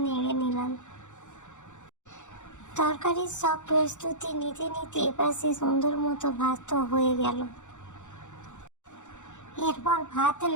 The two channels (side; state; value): right; late; 0.85 ms